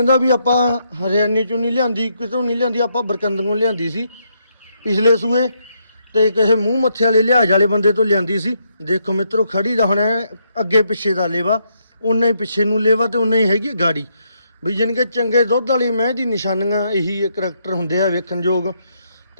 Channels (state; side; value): inverted; both; correlation -0.77